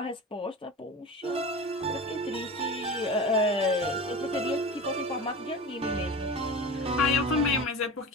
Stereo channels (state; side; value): normal; both; correlation 0.30